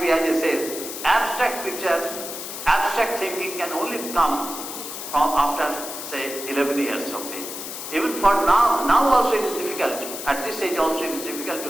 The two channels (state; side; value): noise; left; hiss, 8 dB below the sound